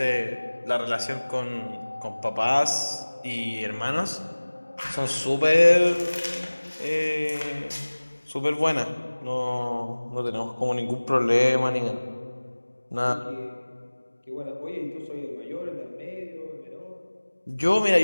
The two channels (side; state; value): both; inverted; correlation -1.00